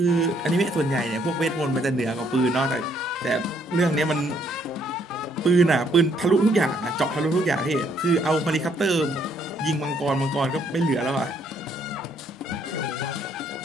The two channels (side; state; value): both; normal; correlation 0.68